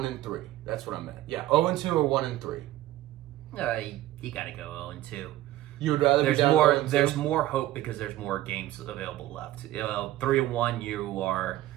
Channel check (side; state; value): left; quieter; 15.3 dB